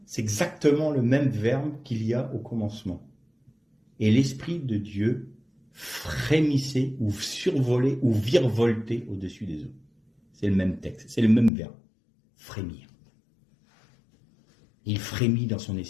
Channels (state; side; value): drops out; right; at 11.5 s